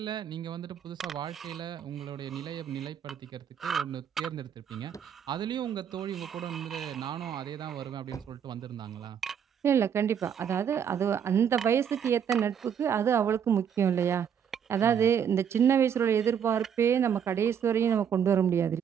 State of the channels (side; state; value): left; quieter; 8.1 dB